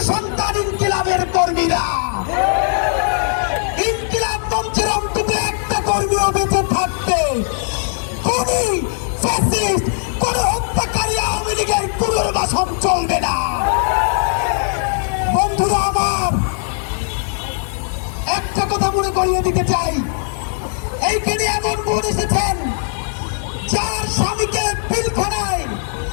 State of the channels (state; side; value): silent; right; digital silence